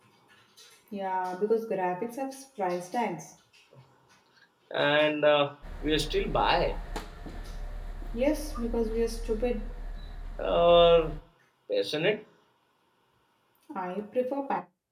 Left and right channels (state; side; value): identical; both; correlation 1.00